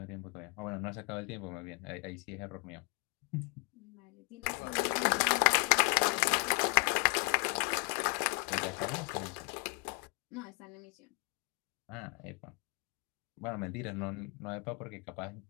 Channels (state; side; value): quieter; right; 33.4 dB